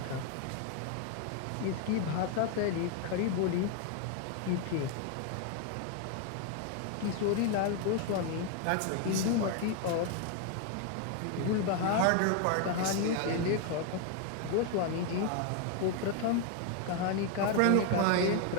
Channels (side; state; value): both; different; correlation 0.01